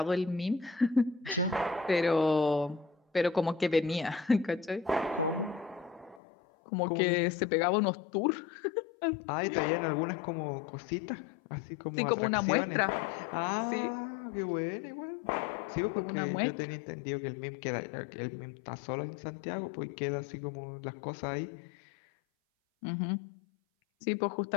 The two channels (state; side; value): drops out; right; at 6.2 s